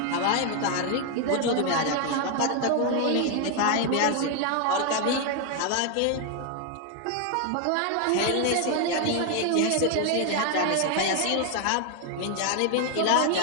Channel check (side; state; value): both; different; correlation 0.01